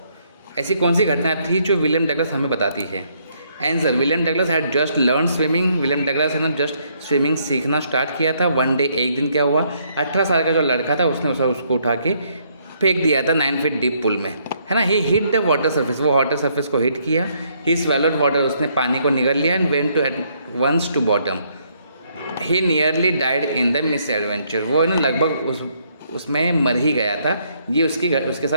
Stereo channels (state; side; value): inverted; both; correlation -0.70